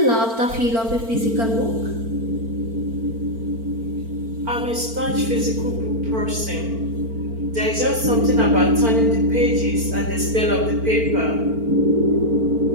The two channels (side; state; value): left; late; 4.4 ms